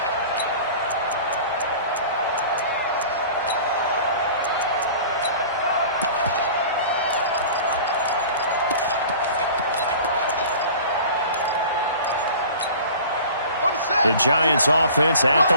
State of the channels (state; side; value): inverted; both; correlation -0.41